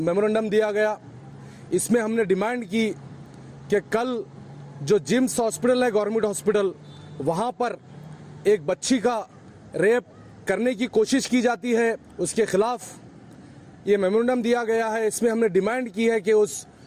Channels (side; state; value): both; identical; correlation 1.00